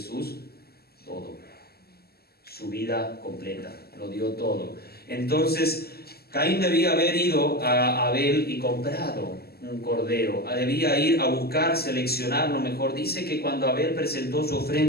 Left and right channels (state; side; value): late; right; 0.46 ms